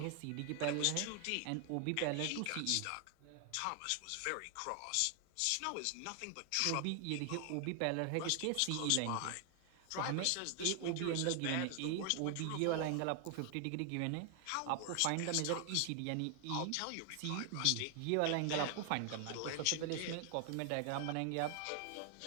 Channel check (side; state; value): both; different; correlation 0.00